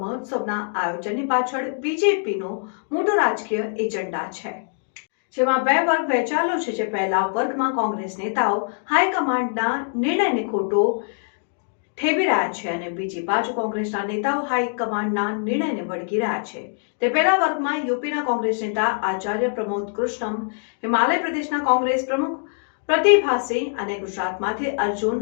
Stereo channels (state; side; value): silent; right; digital silence